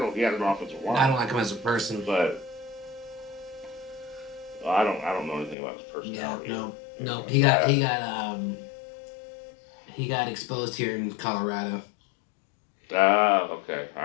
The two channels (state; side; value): drops out; right; at 5.6 s